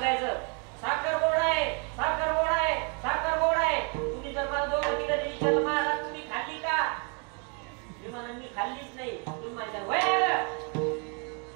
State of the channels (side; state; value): left; quieter; 36.8 dB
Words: साखर गोड आहे, साखर गोड आहे, साखर गोड आहे. तुम्ही जर मला दोघं तिघं विचारलं महाराज तुम्ही खाल्ली का, मी म्हणा मी खाल्लीच नाही. तुम्ही माझ्या वय